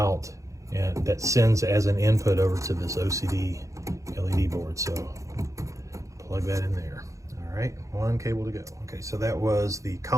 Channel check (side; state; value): left; late; 0.15 ms